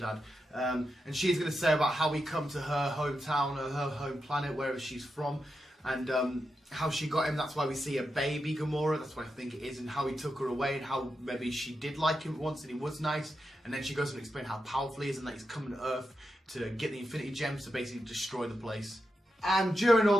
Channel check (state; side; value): normal; both; correlation 0.87